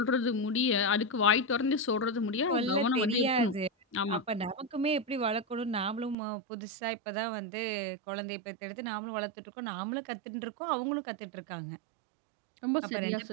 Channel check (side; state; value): left; drops out; at 6.2 s